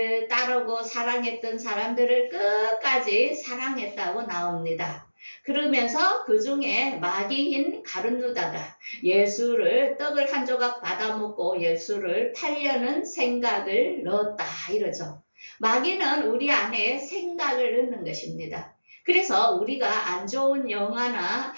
따르고 사랑했던 사람들을 끝까지 사랑했다고 나옵니다. 그러면서 그 중에 마귀인 가룟유다가 예수를 떡을 한 조각 받아먹고 예수를 팔려는 생각을 넣었다 이러죠. 마귀는 우리 안에 생각을 넣는 것입니다. 그래서 우리가 안 좋은 영화나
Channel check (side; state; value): both; inverted; correlation -1.00